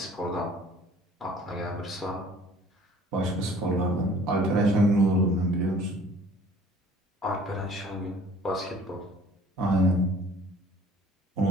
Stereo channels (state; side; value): normal; both; correlation 0.52